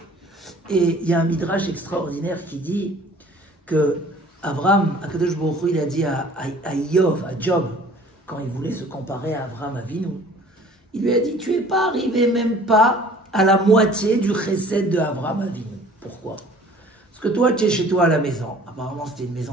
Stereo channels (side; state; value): both; normal; correlation 0.51